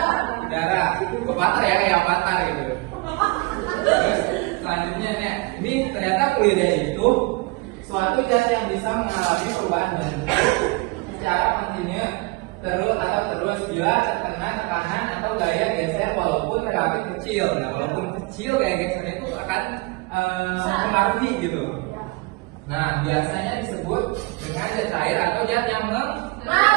udara, avatar ya, kayak avatar gitu. Terus selanjutnya nih, ini ternyata fluida itu suatu zat yang bisa mengalami perubahan bentuk secara kontinu terus bila terkena tekanan atau gaya geser walaupun relatif kecil. Nah, walaupun kecil gaya gesernya itu akan mempengaruhi gitu. Nah, biasanya disebut dengan zat cair atau zat yang mengalir.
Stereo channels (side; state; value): left; quieter; 25.1 dB